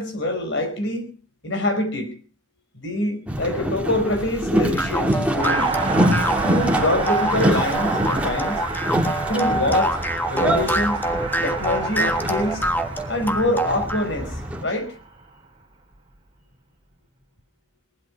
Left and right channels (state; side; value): normal; both; correlation 0.40